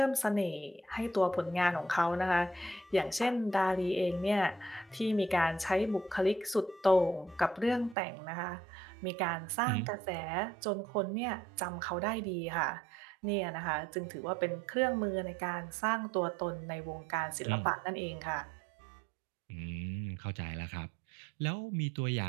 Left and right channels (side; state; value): left; drops out; at 8.0 s